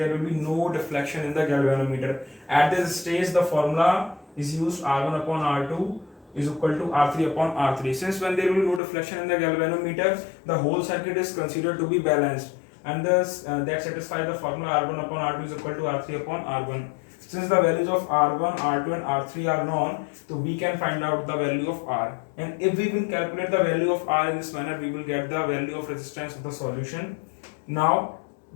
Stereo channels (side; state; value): right; drops out; at 8.8 s